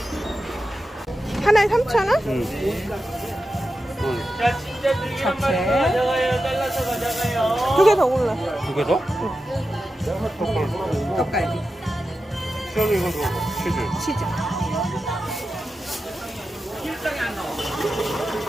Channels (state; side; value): normal; both; correlation 0.91